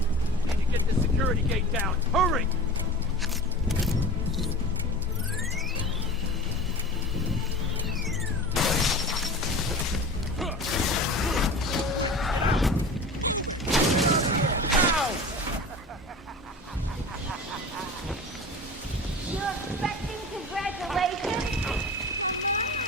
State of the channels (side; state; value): both; normal; correlation 0.36